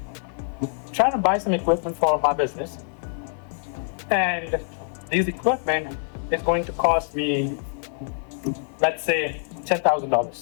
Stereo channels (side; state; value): right; silent; 62 dB below the other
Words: trying to buy some equipment for my business, and this equipment is going to cost me, let's say,